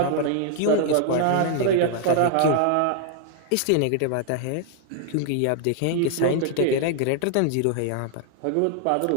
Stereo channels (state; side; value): different; both; correlation 0.00